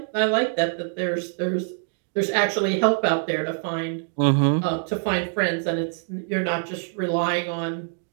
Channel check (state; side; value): silent; left; digital silence